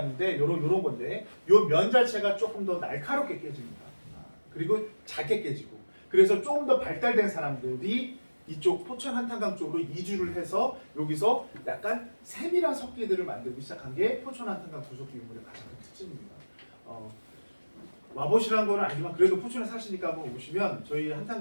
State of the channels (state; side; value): inverted; both; correlation -1.00